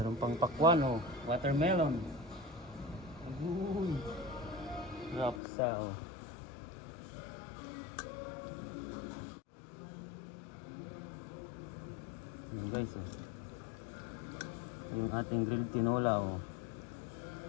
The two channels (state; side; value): drops out; right; at 5.4 s